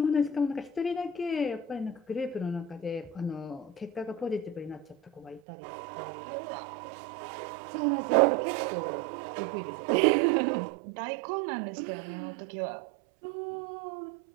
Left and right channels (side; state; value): left; drops out; at 5.4 s